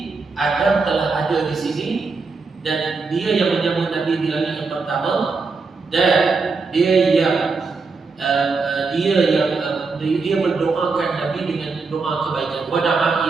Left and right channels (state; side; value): quieter; left; 4.3 dB